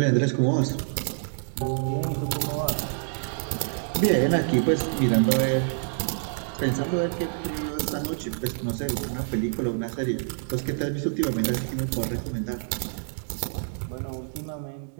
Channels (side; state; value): left; silent; digital silence